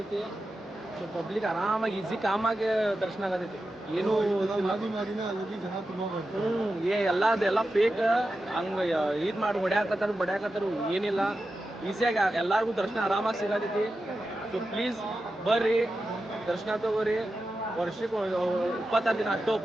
ಸೊ ಪಬ್ಲಿಕ್ ಆರಾಮಾಗಿ ಈಸಿ ಕಾಮಾಗಿ ದರ್ಶನ ಆಗತೈತಿ. ಏನು ಎಲ್ಲ ಫೇಕ್ ಹಂಗೆ ಇದು ಮಾಡಿ ಬಡ್ಯಾಕತ್ತಾರು ಏನಿಲ್ಲ. ಈಸಿಯಾಗಿ ಎಲ್ಲರಿಗೂ ದರ್ಶನ ಆರಾಮಾಗಿ ಸಿಗತೈತಿ. ಸೊ ಪ್ಲೀಸ್ ಬರ್ರಿ, ದರ್ಶನ ತಗೋರಿ. ವರ್ಷಕ್ಕೆ 26 ದಿನ ಅಷ್ಟು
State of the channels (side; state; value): both; normal; correlation 0.91